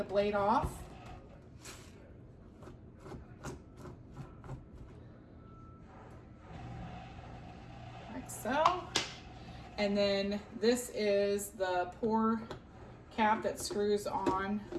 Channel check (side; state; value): both; identical; correlation 1.00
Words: blade off. Like so. And then this is the pour cap that screws on.